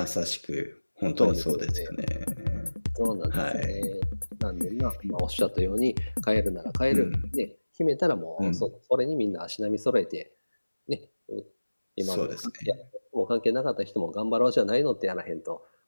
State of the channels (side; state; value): both; inverted; correlation -1.00